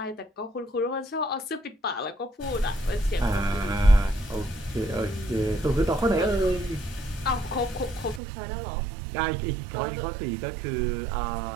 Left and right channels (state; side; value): drops out; left; at 8.2 s